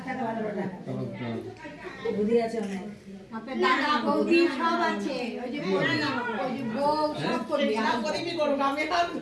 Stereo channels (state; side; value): identical; both; correlation 1.00